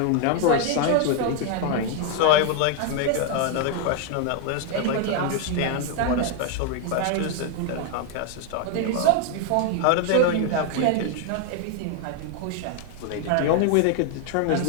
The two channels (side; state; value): both; different; correlation 0.00